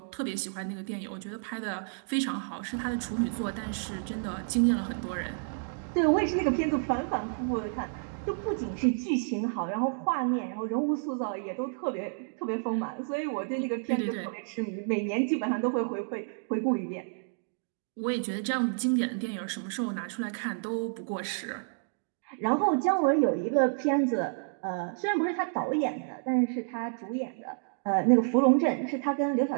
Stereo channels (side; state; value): left; silent; digital silence